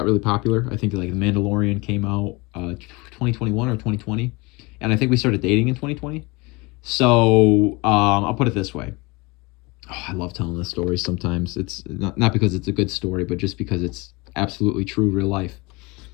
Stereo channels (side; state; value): right; quieter; 25.3 dB